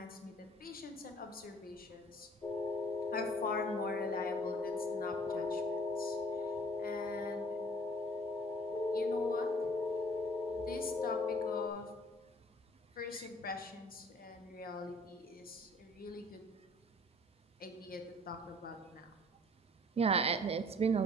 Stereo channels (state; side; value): normal; both; correlation 0.54